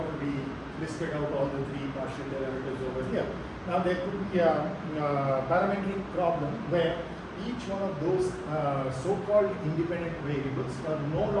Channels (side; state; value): both; identical; correlation 1.00